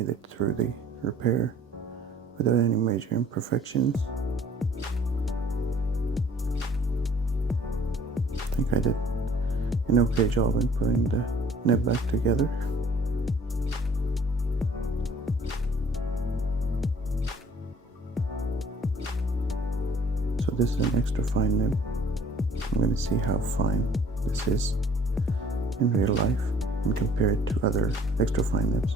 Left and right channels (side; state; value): both; normal; correlation 0.56